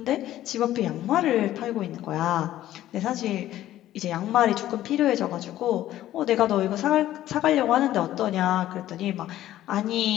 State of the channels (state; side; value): quieter; right; 13.6 dB